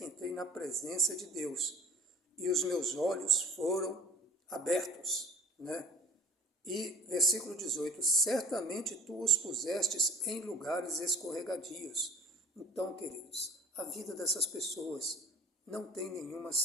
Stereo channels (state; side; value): normal; both; correlation 0.46